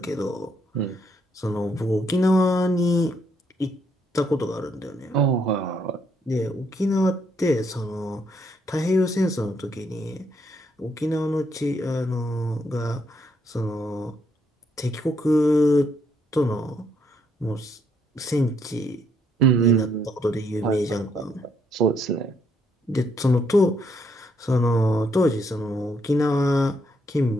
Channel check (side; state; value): both; normal; correlation 0.73